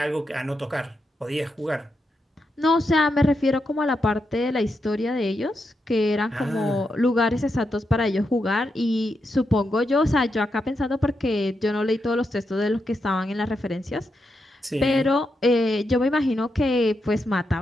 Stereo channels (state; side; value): normal; both; correlation 0.84